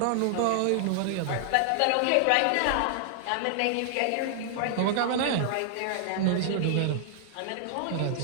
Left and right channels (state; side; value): different; both; correlation -0.01